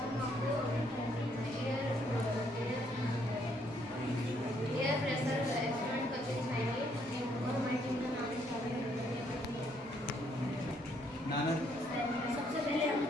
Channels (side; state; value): both; normal; correlation 0.70